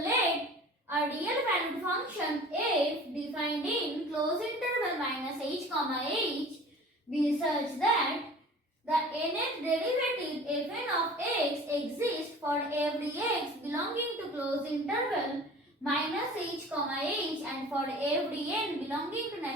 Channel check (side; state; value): both; normal; correlation 0.43